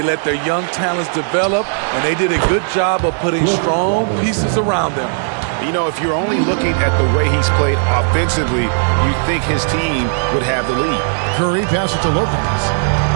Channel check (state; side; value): silent; left; digital silence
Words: let their young talents develop, and they did a good job of putting strong pieces around them. You know, if you're only looking at the way he's played offensively, you think his team would have the lead. Curry passes to Lopez.